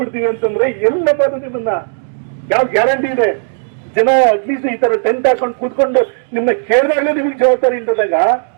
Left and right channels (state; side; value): silent; left; digital silence